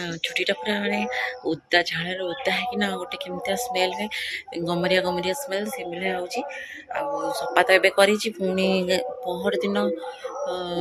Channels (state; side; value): identical; both; correlation 1.00